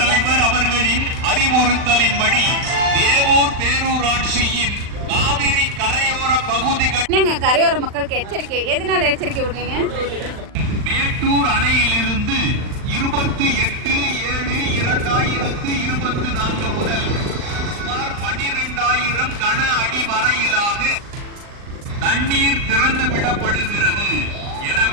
அவர்களின் அறிவுறுத்தலின்படி தேவூர் பேரூராட்சியின் காவிரி கரையோர பகுதிகள் கரையோர மக்களுக்கு எச்சரிக்கை. எதனால எச்சரிக்கை விடுறீங்க? மேட்டூர் அணையிலிருந்து 28/7/2024 முதல் சுமார் 12,000 கன அடி வரையிலாக தண்ணீர் திறந்து விடப்படுகிறது.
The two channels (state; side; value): late; left; 39 ms